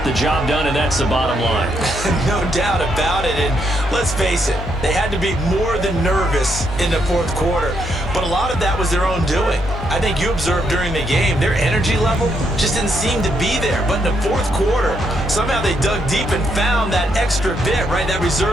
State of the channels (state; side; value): noise; left; hum, 8 dB below the sound